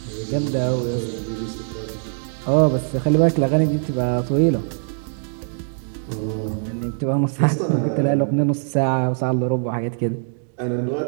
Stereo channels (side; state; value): left; silent; digital silence